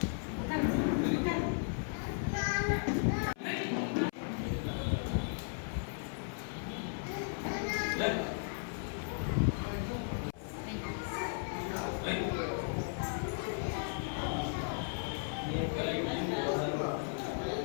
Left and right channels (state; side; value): silent; right; 54 dB below the other